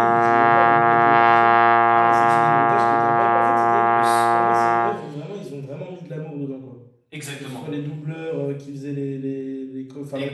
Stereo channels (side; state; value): both; identical; correlation 1.00